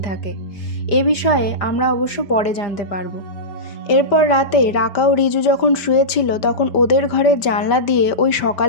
থাকে। এ বিষয়ে আমরা অবশ্য পরে জানতে পারবো। এরপর রাতে রাকা ও রিজু যখন শুয়েছিল, তখন ওদের ঘরের জানলা দিয়ে ওই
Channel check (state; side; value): late; right; 5.1 ms